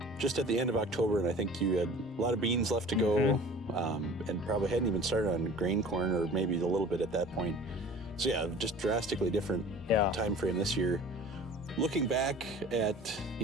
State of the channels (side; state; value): both; normal; correlation 0.44